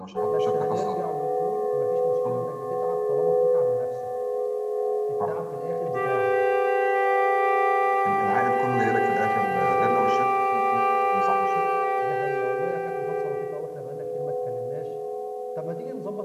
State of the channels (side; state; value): both; identical; correlation 1.00